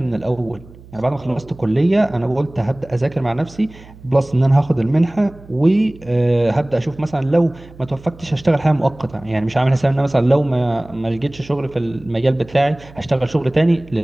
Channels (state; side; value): noise; right; hum, 21 dB below the sound